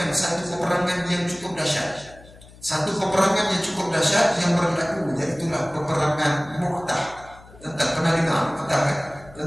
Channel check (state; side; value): noise; left; hum, 22 dB below the sound